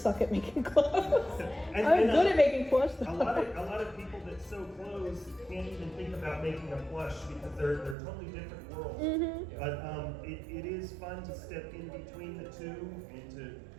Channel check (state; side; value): drops out; left; at 8.0 s